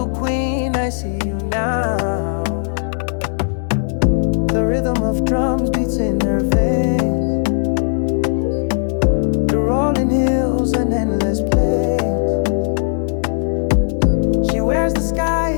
queen, I see you now. The rhythm of drums beats in her veins. The rolling hills and endless plains. She wears the sky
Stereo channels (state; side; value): silent; right; digital silence